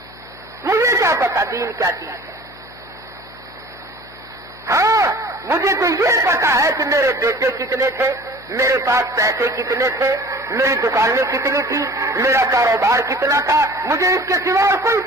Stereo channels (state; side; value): noise; left; hum, 23 dB below the sound